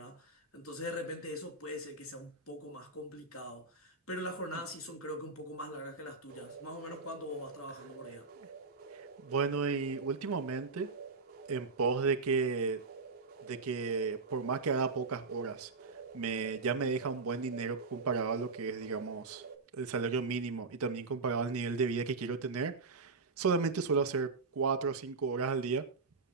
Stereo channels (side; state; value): left; quieter; 4.1 dB